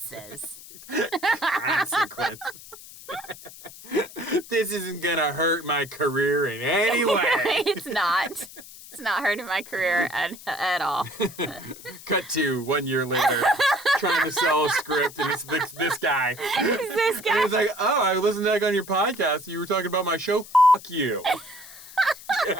Consequences. This isn't going to hurt my career in any way. It's not. It's not hurting my career at all. Cut to 1 year later, trying to sell a script, and it's this guy. It's this guy. And he's like, oh, I listened to that on your podcast. You were talking about my show. Fuck you. Get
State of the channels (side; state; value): left; noise; hiss, 17 dB below the sound